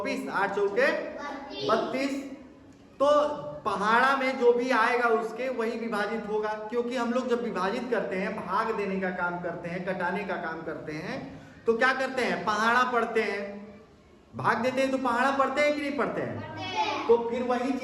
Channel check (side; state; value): both; identical; correlation 1.00